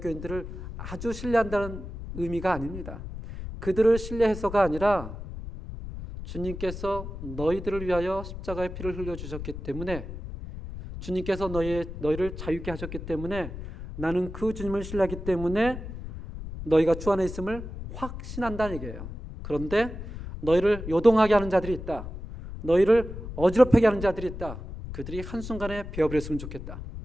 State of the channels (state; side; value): noise; left; rumble, 9 dB below the sound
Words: 아주 신뢰한다는 의미가 아닙니다. 그들을 신뢰해서가 아니라 주님께서 너희들을 위하여 십자가의 피를 흘려주셨기 때문에, 주님께서 너희를 자유케 하셨기 때문에, 나는 그 주님을 신뢰하기 때문에 너희가 주 안에 있음을 확신한다는 얘기예요. 그런데 너희를 요동하게 하는 자들이 있다. 너희를 어지럽게 하는 자들이 있다. 그들이 한순간에 베어버렸으면 좋겠다.